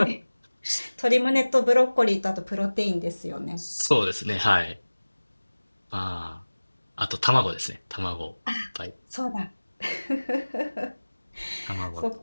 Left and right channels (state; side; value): inverted; both; correlation -1.00